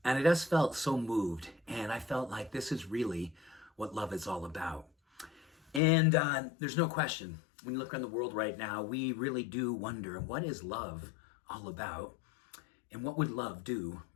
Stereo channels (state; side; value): drops out; right; at 5.8 s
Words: and I just felt so moved. And I felt like this is really what love is all about. And there's no question, when you look around the world right now, we really do wonder, what is love all about? And what would love do